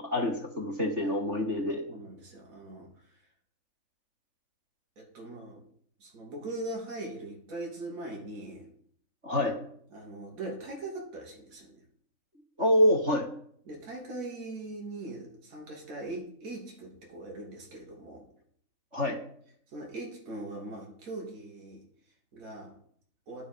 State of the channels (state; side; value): late; left; 3.4 ms